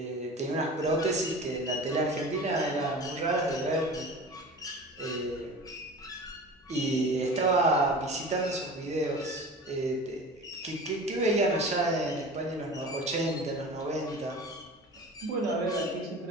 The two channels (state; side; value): normal; both; correlation 0.37